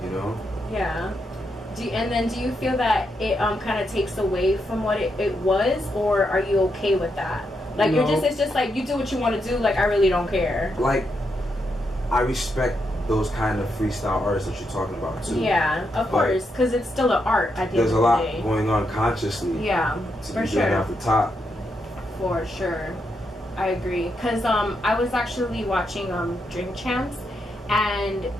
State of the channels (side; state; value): both; normal; correlation 0.82